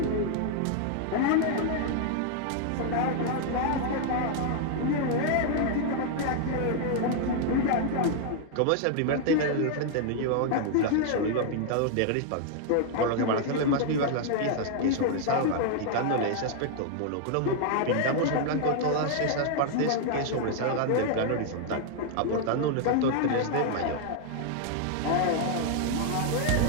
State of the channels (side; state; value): both; different; correlation 0.00